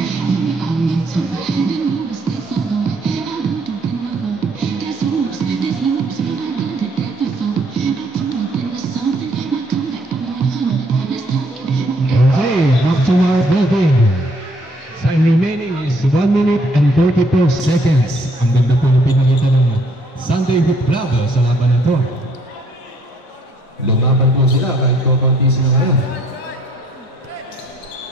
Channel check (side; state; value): both; normal; correlation 0.65